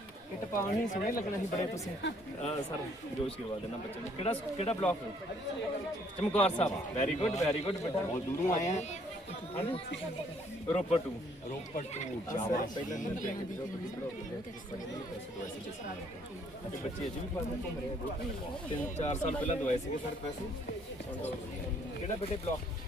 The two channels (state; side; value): normal; both; correlation 0.64